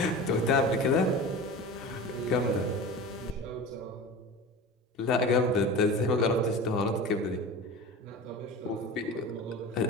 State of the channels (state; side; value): normal; both; correlation 0.33